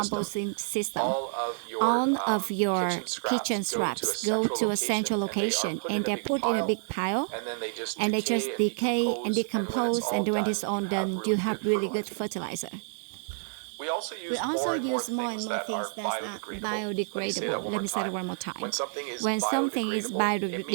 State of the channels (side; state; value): left; silent; digital silence